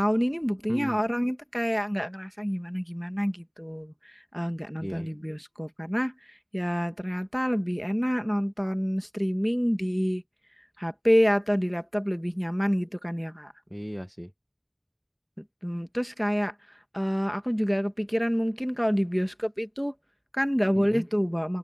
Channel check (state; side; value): identical; both; correlation 1.00